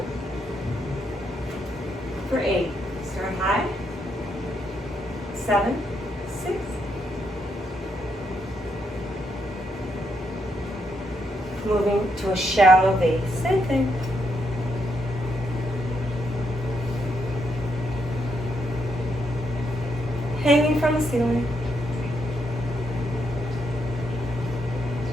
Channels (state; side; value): normal; both; correlation 0.78